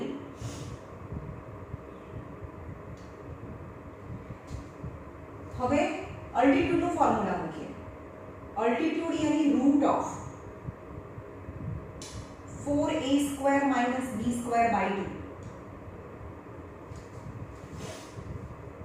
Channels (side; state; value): both; identical; correlation 1.00